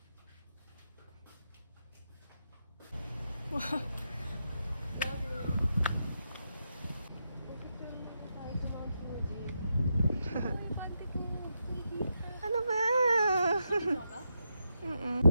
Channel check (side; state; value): both; inverted; correlation -0.85